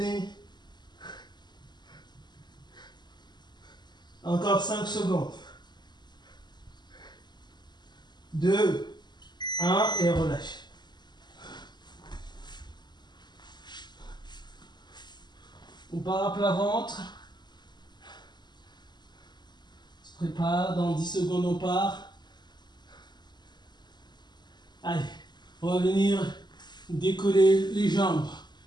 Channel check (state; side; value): late; right; 0.21 ms